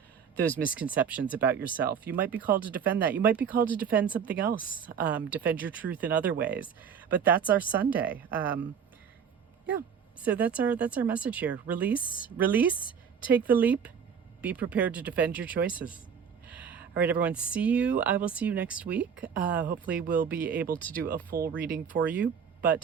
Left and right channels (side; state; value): left; quieter; 7.2 dB